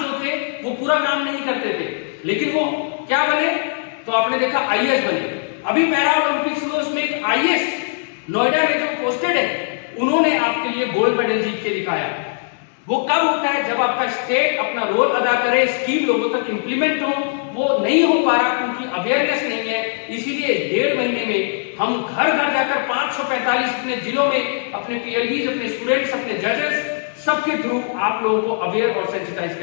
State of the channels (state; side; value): silent; right; digital silence